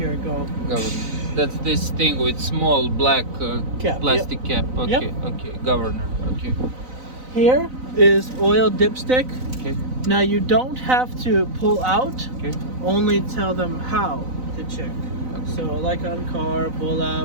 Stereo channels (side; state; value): left; late; 4.0 ms